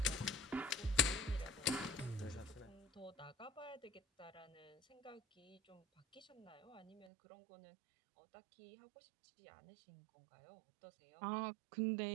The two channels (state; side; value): drops out; left; at 7.1 s